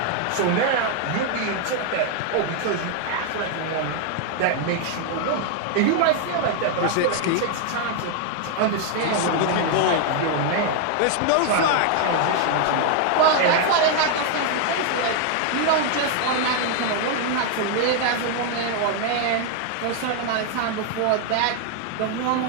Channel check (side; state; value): both; different; correlation 0.00